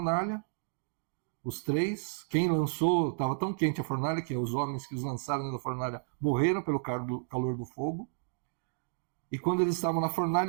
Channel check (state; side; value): silent; left; digital silence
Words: os três. Quem lançou, estava tão quente a fornalha que os homens que os lançaram na fornalha morreram pelo calor do fogo. E quando eles estavam na